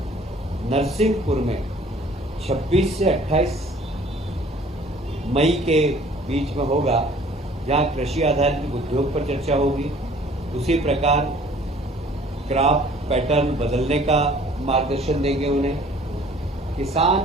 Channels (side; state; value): both; normal; correlation 0.53